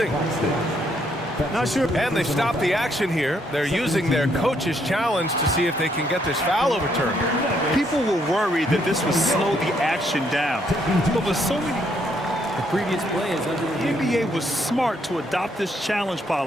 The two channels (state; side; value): normal; both; correlation 0.72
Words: Not sure. And they stopped the action here. They're using their coach's challenge to see if they can get this foul overturned. People were worried that this would slow the action down. But with so many... The previous play is under the NBA was smart to adopt this challenge